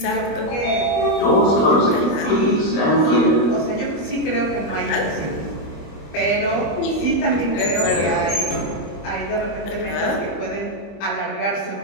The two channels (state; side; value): late; right; 25 ms